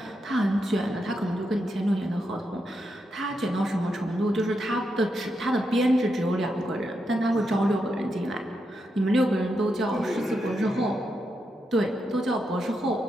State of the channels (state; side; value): normal; both; correlation 0.84